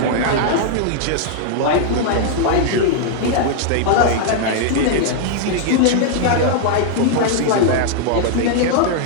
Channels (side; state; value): both; different; correlation -0.01